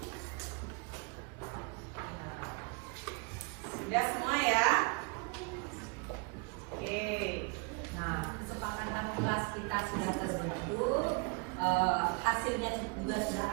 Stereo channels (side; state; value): left; quieter; 31.8 dB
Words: Sudah semua ya? Oke. Nah, kesepakatan kelas kita sudah terbentuk, hasilnya juga sudah